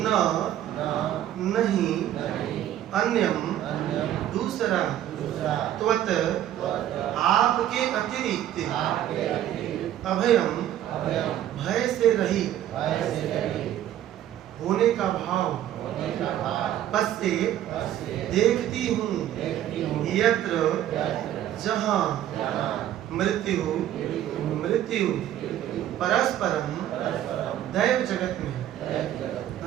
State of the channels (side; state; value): left; quieter; 11.9 dB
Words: नहीं अन्यम दूसरा त्वत आपके अतिरिक्त अभयम भय से रहित होने का भाव पश्चे देखती हूँ यत्र जहाँ मृत्यु परस्परम दैव जगत में।